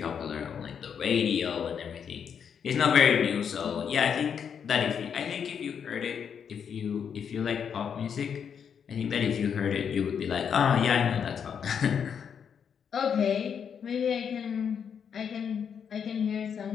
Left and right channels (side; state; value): right; quieter; 7.4 dB